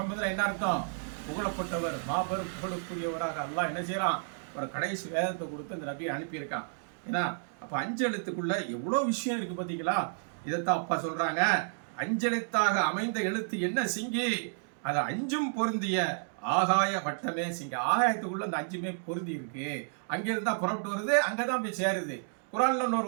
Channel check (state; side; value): silent; left; digital silence